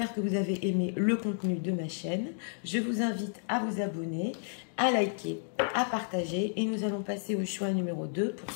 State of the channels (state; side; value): silent; right; digital silence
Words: que vous avez aimé le contenu de ma chaîne. Je vous invite à vous abonner, à liker, à partager et nous allons passer au choix numéro 2 pour